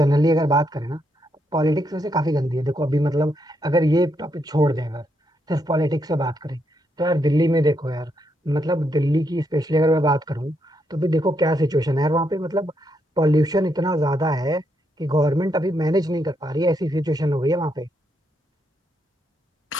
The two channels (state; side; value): normal; both; correlation 0.78